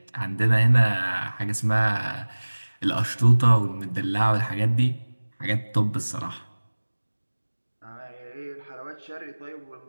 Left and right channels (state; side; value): inverted; both; correlation -1.00